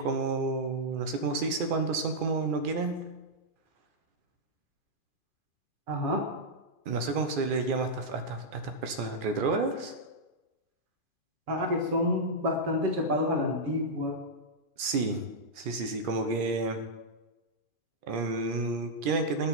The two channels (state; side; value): late; left; 2.4 ms